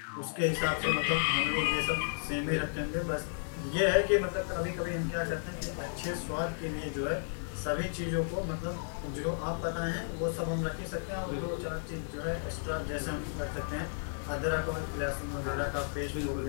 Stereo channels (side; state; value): right; silent; digital silence